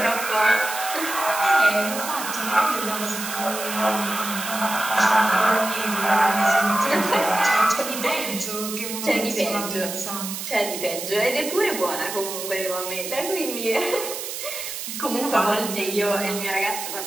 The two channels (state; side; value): noise; right; hiss, 7 dB below the sound